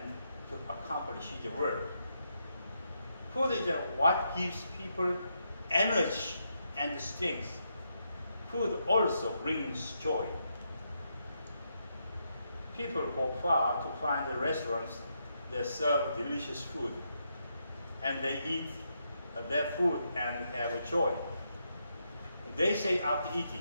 to accomplish his work. Food is what gives people energy and strength. Food also brings joy. People go far to find the restaurants that serve delicious food, and they eat their food and have joy. They say after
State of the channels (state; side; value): inverted; both; correlation -0.81